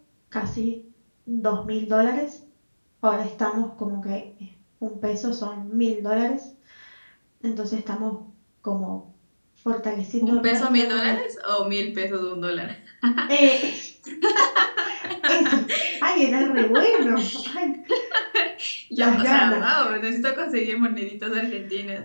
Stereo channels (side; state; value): both; inverted; correlation -1.00